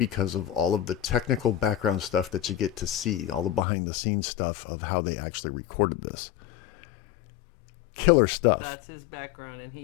of all of the technical background stuff that you get to see, all the behind-the-scenes stuff of how they actually recorded this. Killer stuff. That's his background, and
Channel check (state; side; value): drops out; right; at 3.6 s